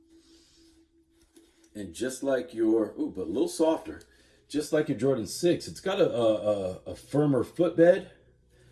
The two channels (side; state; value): both; identical; correlation 1.00